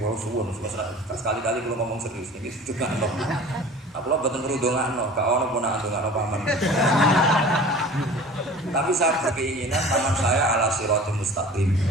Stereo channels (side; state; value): both; normal; correlation 0.42